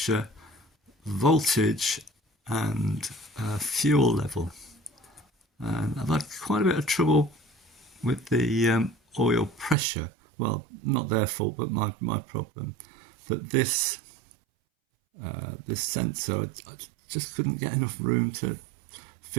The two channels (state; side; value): drops out; left; at 9.8 s